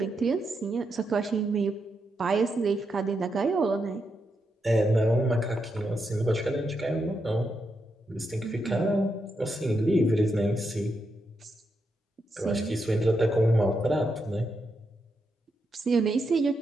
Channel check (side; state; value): both; normal; correlation 0.83